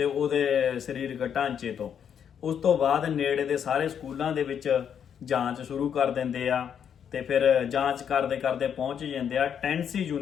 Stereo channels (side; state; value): right; quieter; 8.2 dB